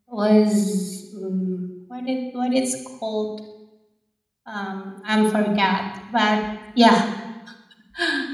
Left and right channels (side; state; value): both; identical; correlation 1.00